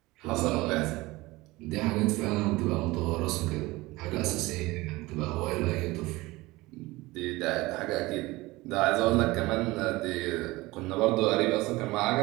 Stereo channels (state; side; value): quieter; left; 20.7 dB